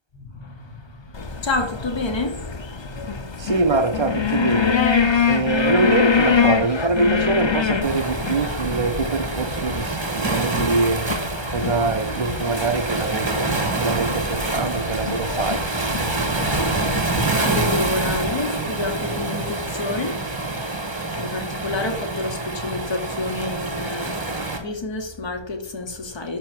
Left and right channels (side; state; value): right; late; 1.3 ms